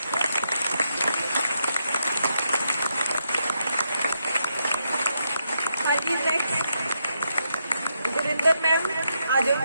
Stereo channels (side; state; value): both; inverted; correlation -0.81